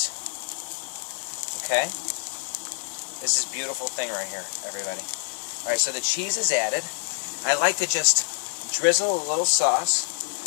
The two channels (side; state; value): right; silent; 56 dB below the other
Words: Okay? This is a beautiful thing right here, everybody. Alright, so the cheese is added. I like to just drizzle a little sauce